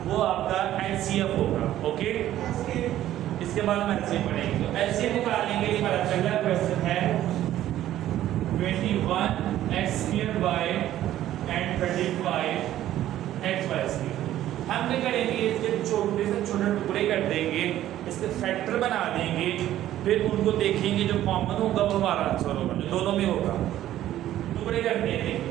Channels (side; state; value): left; quieter; 13.0 dB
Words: वो आपका HCF होगा। ओके, इसके बाद हम LCM पढ़ेंगे। तो LCM निकालने के लिए हमारा पहला क्वेश्चन है 21x² and 35xy²। हम क्या करेंगे, इसके छोटे से छोटे टुकड़े कर देंगे, इसके फैक्टर बना देंगे, फिर उनको देखेंगे, जो कॉमन होगा वो हमारा आंसर होगा, जो दोनों में होगा। टुकड़े करते हैं,